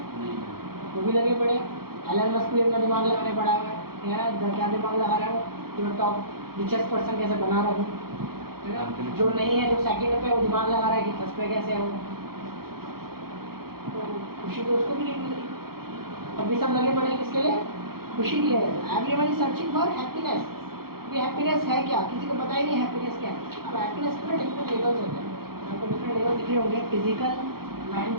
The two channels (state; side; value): late; left; 0.94 ms